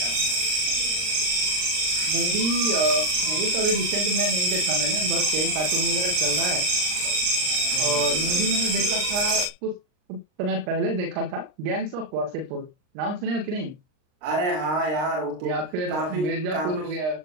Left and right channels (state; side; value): late; left; 39 ms